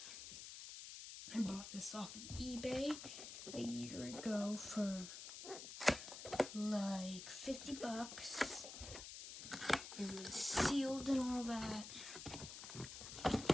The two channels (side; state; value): left; noise; hiss, 9 dB below the sound